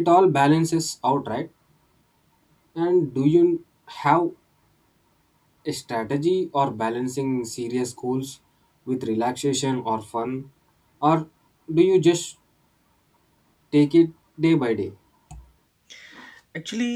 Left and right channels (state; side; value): identical; both; correlation 1.00